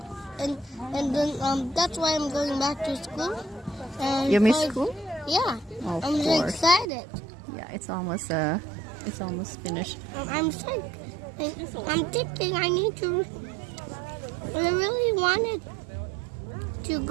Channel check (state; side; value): drops out; left; at 6.9 s